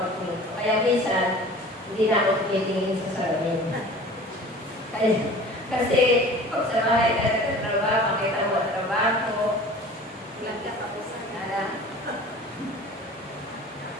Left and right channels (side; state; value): both; normal; correlation 0.42